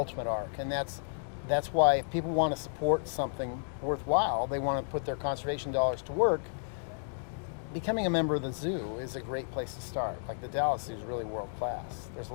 ark, and that's why if people want to support something worthwhile, they want to put their conservation dollars to work, becoming a member of the zoo is a great place to start. Like the Dallas Zoo is really world class. There's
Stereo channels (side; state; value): right; silent; digital silence